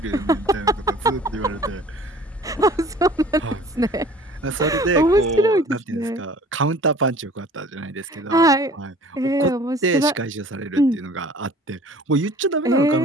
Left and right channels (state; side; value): normal; both; correlation 0.49